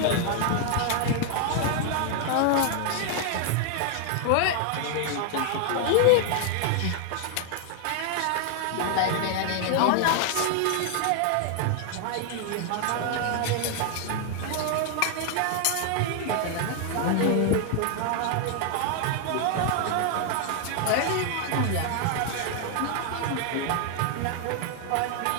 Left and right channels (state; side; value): different; both; correlation 0.00